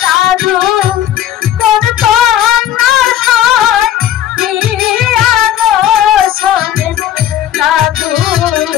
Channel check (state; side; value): quieter; right; 11.2 dB